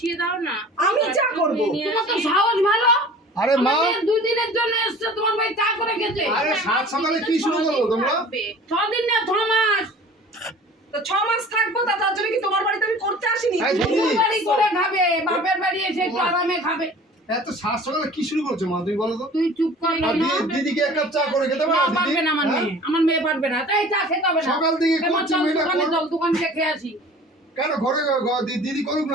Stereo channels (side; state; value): both; normal; correlation 0.45